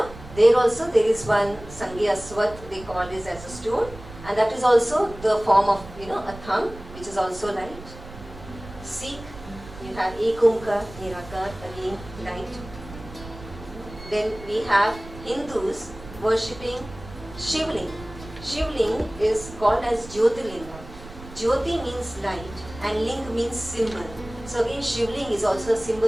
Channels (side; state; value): right; noise; rumble, 16 dB below the sound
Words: there also there is one Sangi Aswat, they call this as a stone, and that is also the form of, a thumb, which is also light. Sikh, you have Ek Omkar, Nirakar, again light. Then we have Hindus worshipping Shivling. Shivling is called as Jyotirlinga. Jyoti means light and ling means symbol. So again, Shivling is also a